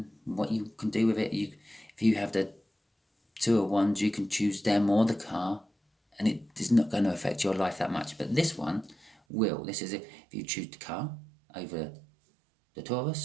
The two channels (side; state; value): left; drops out; at 9.2 s